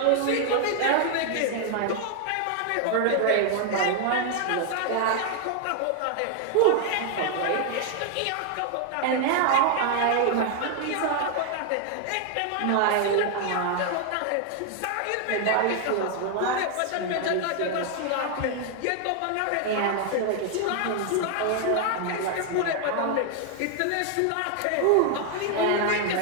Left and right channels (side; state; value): both; different; correlation 0.00